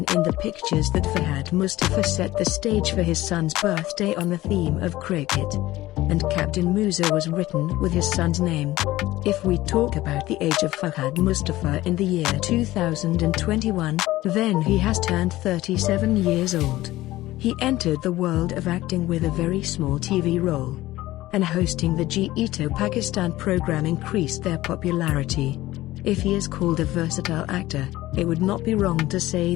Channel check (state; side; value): quieter; right; 16.8 dB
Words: in the pictures that Fahad Mustafa set the stage for his son's birthday on the theme of cricket, and Captain Moosa was written with his son's name. If we talk about the age of Fahad Mustafa in the year 2021, then he has turned 37 years old. He entered the world of acting with a very small TV role, and hosting the Jeeto Pakistan program increased their popularity. If he is called a versatile actor, it would not be wrong to say